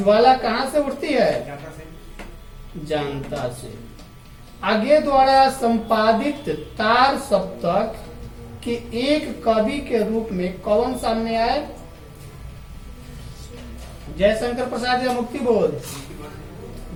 कहाँ से उठती है? जानता से। आगे द्वारा संपादित तार सप्तक के एक कवि के रूप में कौन सामने आए? जयशंकर प्रसाद या मुक्ति बोध?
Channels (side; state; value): both; identical; correlation 1.00